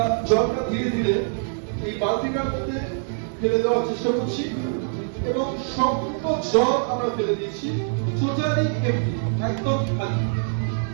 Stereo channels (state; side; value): silent; left; digital silence